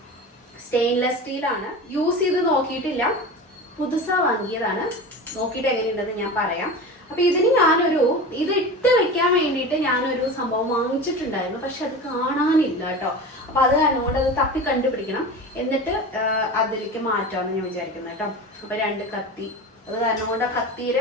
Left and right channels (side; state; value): both; normal; correlation 0.30